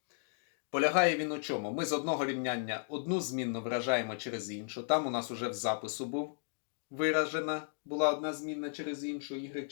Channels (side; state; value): right; silent; digital silence